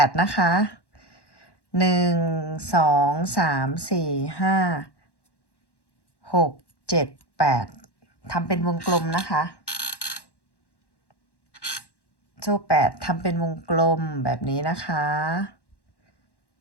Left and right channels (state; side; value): late; right; 1.1 ms